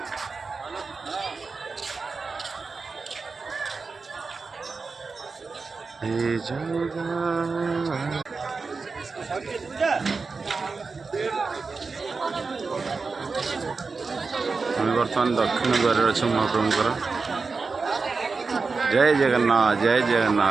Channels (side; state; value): left; quieter; 4.4 dB